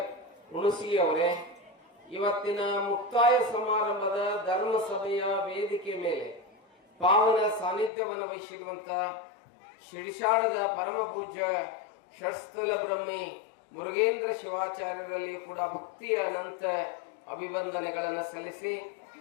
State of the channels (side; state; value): right; drops out; at 7.9 s